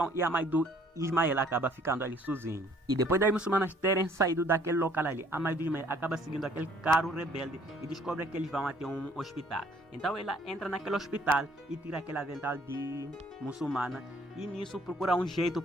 e a mãe do Ismael acaba ficando ali sozinho. E depois das muçulmanas terem saído daquele local ali, a mãe do Ismael acaba seguindo aquele carro rebelde e descobre que eles vão até um hospital. Então ela entra naquele hospital e tira aquele avental de muçulmana e nisso procura um jeito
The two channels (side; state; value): both; normal; correlation 0.60